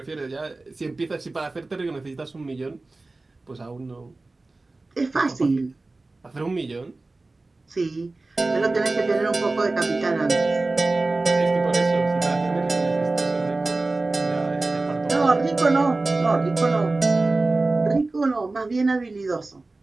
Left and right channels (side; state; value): left; quieter; 3.3 dB